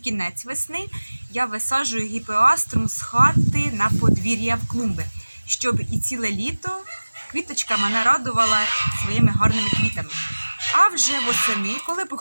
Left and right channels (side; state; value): both; inverted; correlation -1.00